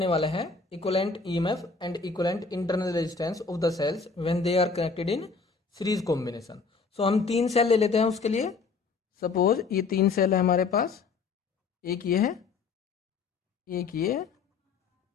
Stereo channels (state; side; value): quieter; right; 4.6 dB